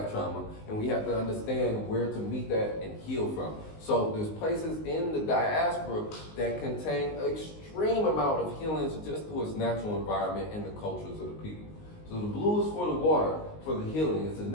trauma, and we have to understand where to meet that and heal from. So there's places in the diaspora that contain extreme amount of healings just through its natural environment and the cultures of the people. So the blue is for the water, for the healing. It's a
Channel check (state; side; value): late; right; 19 ms